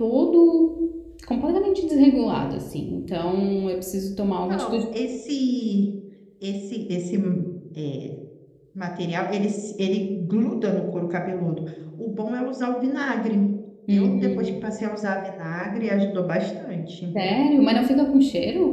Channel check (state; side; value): identical; both; correlation 1.00